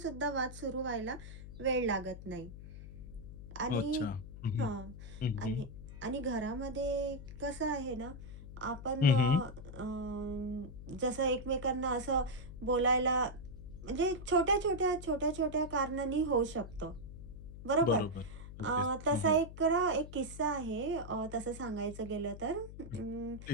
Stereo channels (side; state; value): left; noise; hum, 12 dB below the sound